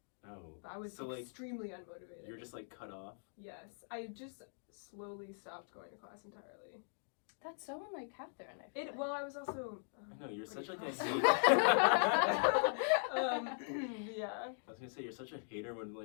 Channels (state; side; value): silent; right; digital silence